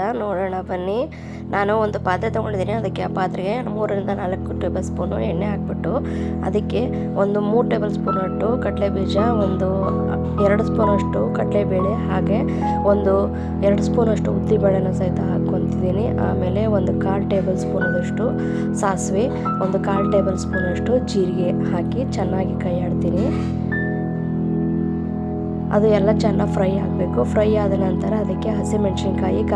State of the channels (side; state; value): both; identical; correlation 1.00